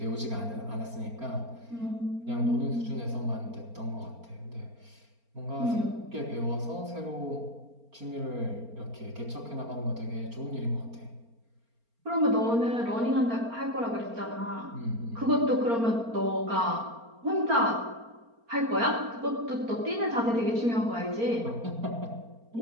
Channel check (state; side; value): late; left; 4.3 ms